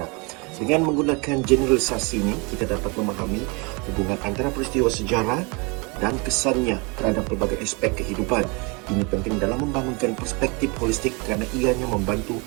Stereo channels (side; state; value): left; quieter; 29.5 dB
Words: Dengan menggunakan generalisasi ini, kita dapat memahami hubungan antara peristiwa sejarah dan kesannya terhadap pelbagai aspek kehidupan. Ini penting dalam membangunkan perspektif holistik kerana ianya membantu